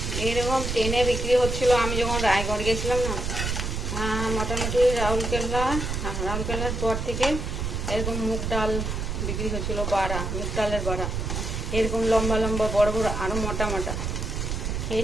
এরকম ট্রেনে বিক্রি হচ্ছিল আমি যখন রায়গড় গেছিলাম না, মোটামুটি রাউরকেল্লার পর থেকে এরকম মুগ ডাল বিক্রি হচ্ছিল, বাড়া, মুগ ডালের বাড়া, এরকম লম্বা লম্বা বড় বড়, আরো মোটা মোটা।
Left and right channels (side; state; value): right; noise; rumble, 2 dB below the sound